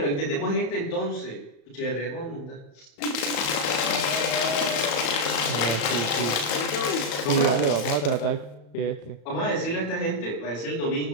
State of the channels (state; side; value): late; right; 35 ms